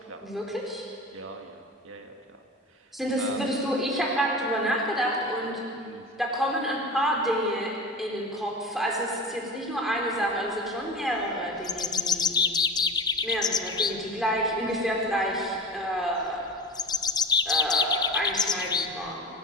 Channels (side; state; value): both; normal; correlation 0.30